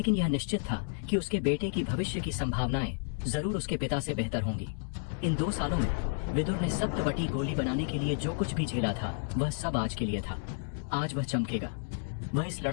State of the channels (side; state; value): right; silent; 57 dB below the other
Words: यह निश्चित था कि उसके बेटे की भविष्य की संभावनाएं जरूर उसके पिता से बेहतर होंगी। इन 2 सालों में विदुर ने सप्तवटी गोली बनाने के लिए जो कुछ भी झेला था, वह सब आज के लिए था। आज वह चमकेगा। वह इस